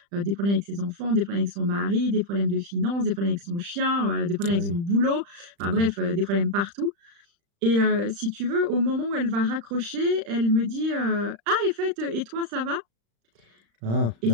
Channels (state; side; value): late; left; 35 ms